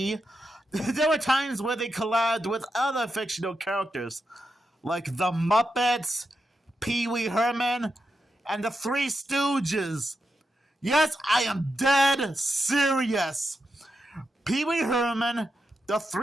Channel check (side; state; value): both; normal; correlation 0.87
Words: there were times where they collabed with other fictional characters, like the Muppets, Pee Wee Herman, and the Three Stooges. Yes, I am dead serious. Pee Wee Herman, the